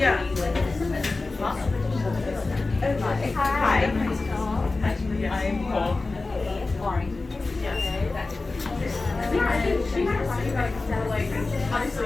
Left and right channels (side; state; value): right; quieter; 3.5 dB